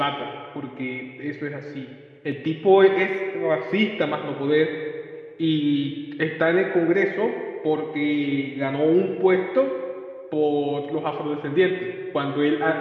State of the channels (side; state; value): both; identical; correlation 1.00